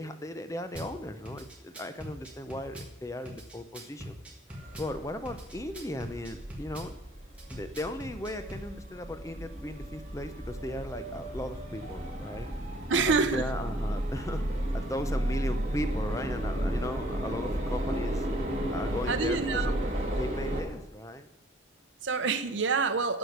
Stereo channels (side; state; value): both; normal; correlation 0.56